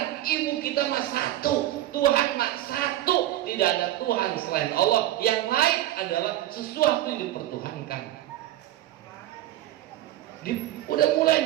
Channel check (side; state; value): left; quieter; 14.3 dB